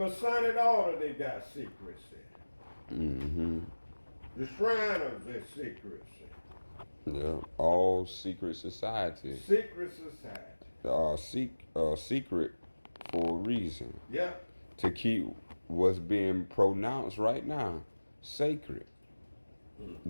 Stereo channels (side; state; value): both; inverted; correlation -1.00